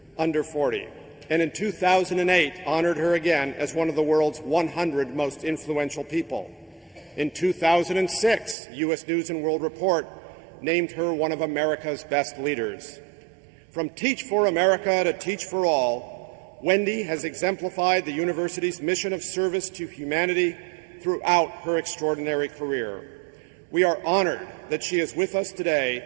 under 40, and in 2008 honored her again as one of the world's 100 most influential people. In 2006, U.S. News & World Report named her one of America's best leaders. From Teach for America to Teach for All, Wendy has exemplified the university's mission of service to humanity throughout her extraordinary career. We are honored that she is with us today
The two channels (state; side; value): drops out; left; at 8.6 s